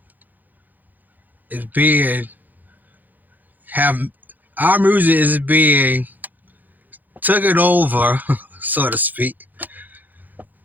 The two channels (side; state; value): left; late; 0.084 ms